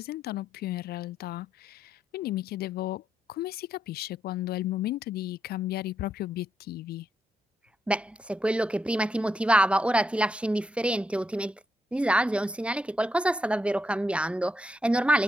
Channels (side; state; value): both; normal; correlation 0.80